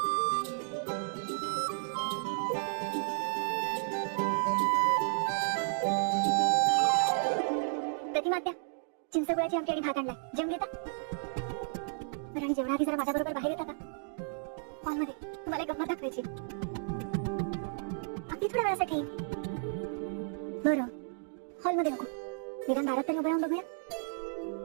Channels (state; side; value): silent; left; digital silence